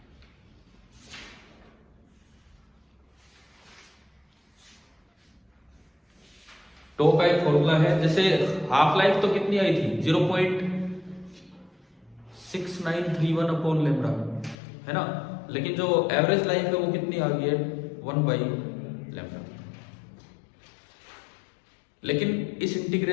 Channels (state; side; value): drops out; right; at 14.6 s